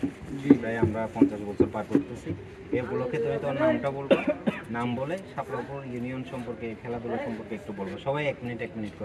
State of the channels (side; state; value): both; identical; correlation 1.00